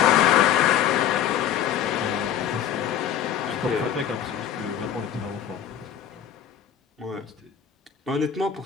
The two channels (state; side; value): quieter; right; 9.5 dB